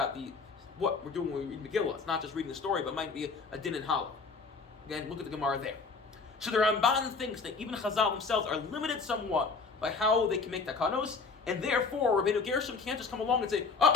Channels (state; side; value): quieter; right; 4.6 dB